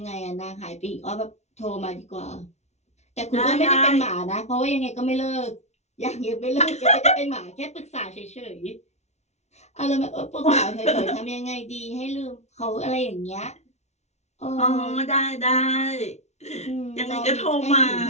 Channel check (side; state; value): right; late; 0.32 ms